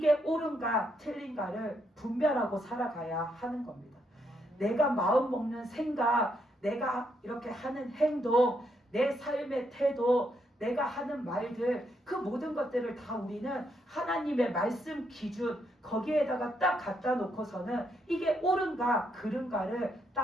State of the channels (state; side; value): normal; both; correlation 0.76